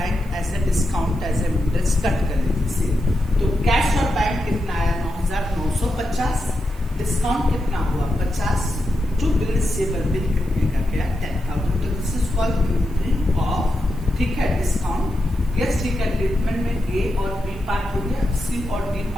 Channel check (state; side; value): noise; left; hiss, 27 dB below the sound